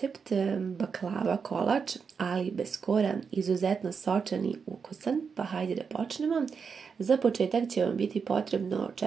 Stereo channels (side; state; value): left; quieter; 5.9 dB